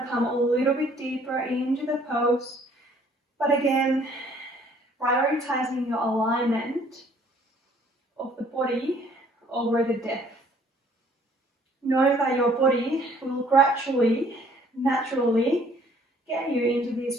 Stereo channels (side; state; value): both; normal; correlation 0.59